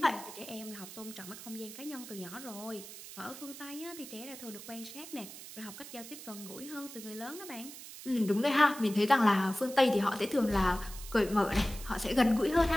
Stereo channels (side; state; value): right; noise; hiss, 13 dB below the sound